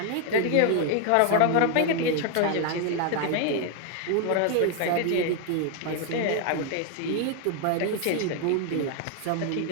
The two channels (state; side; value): different; both; correlation 0.00